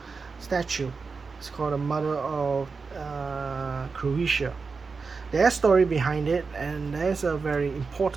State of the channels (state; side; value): quieter; left; 4.7 dB